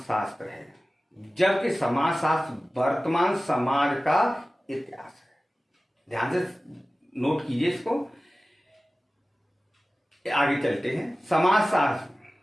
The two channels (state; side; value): normal; both; correlation 0.96